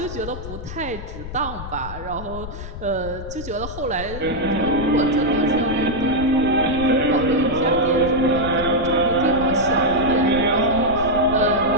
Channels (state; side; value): noise; left; rumble, 10 dB below the sound